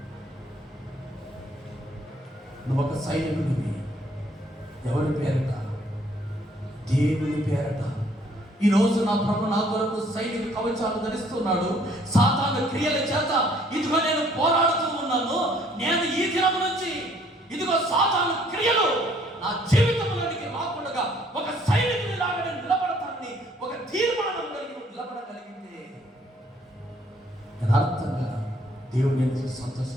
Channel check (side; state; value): both; normal; correlation 0.62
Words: నువ్వు ఒక సైనికుడివి. ఎవరి పేరట? దేవుని పేరట. ఈరోజు నా ప్రభు నా కొరకు సైనిక కవచాలు ధరిస్తున్నాడు. సాతాను క్రియల చేత ఇదిగో నేను పోరాడుతూ ఉన్నాను. నేను ఈ దినం నుంచి ఇదిగో సాతాను క్రియలు నా జీవితంలోనికి రాకుండా ఒక సైనికుని లాగా నేను నిలబడతానని ఒక తీర్మానం కలిగి నిలబడగలిగితే యథార్థంగా దేవుడు నేను